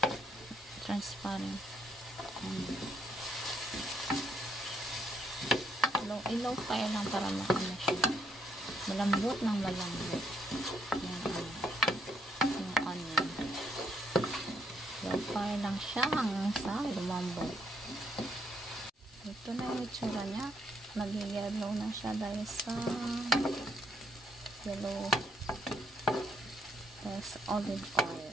transparent. Low fire lang para siya. Malambot ng malambot. Yan, yung onion. Low fire lang siya hanggang sa lumambot. Ito na yung itsura niya. Nag-yellow na siya dahil sa yellow. There's olive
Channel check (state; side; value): normal; both; correlation 0.72